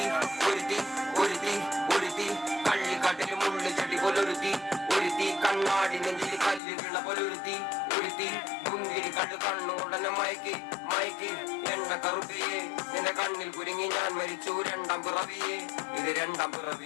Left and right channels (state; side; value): drops out; right; at 6.6 s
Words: ഒരുത്തി ഒരുത്തി ഒരുത്തി കള്ളിക്കാട്ടിൽ മുള്ളു ചട്ടി പോലൊരുത്തി ഒരുത്തി കണ്ണാടി നെഞ്ചിൽ കല്ല് വീണ പോലൊരുത്തി ഒരുത്തി മുന്തിരി കണ്ട് കണ്ണുകൊണ്ടന്നെ മയക്കി മയക്കി എണ്ണ കറുപ്പിയെ നിന്റെ കണ്ണിൽ കുരുങ്ങി ഞാൻ മരിച്ചു രണ്ടാം പിറവിയെ ഇത് രണ്ടാം